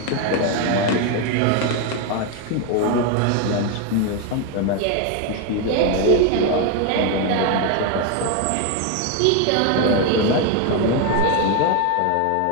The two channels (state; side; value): different; both; correlation 0.02